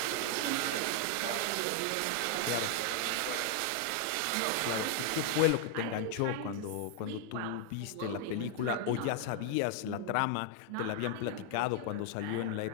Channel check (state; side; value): different; both; correlation 0.00